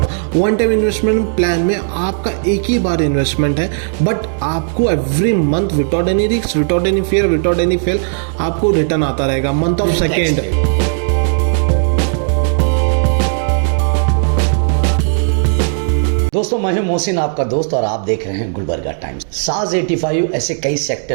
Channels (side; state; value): left; silent; digital silence